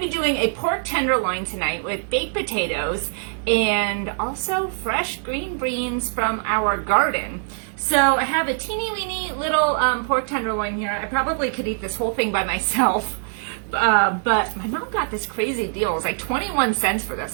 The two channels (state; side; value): silent; left; digital silence